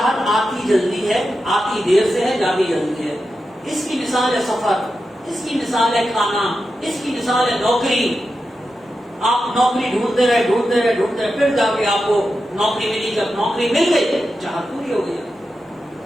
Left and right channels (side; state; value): both; normal; correlation 0.90